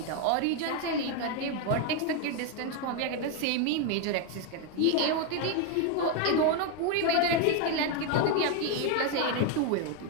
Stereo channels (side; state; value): both; different; correlation 0.01